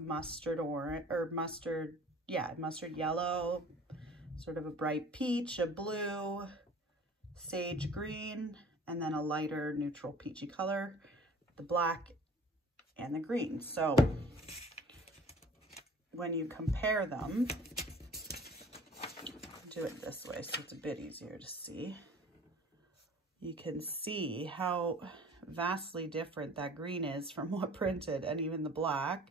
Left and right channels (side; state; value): both; normal; correlation 0.48